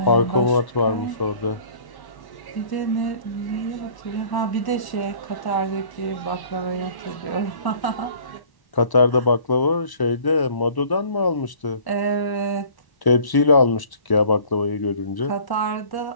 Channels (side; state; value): right; late; 1.1 ms